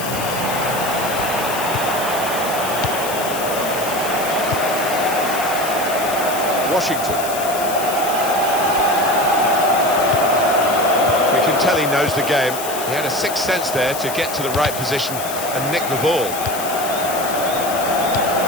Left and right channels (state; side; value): noise; left; hiss, 8 dB below the sound